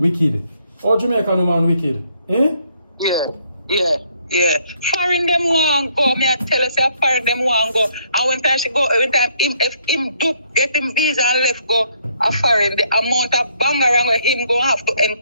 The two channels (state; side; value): inverted; both; correlation -0.68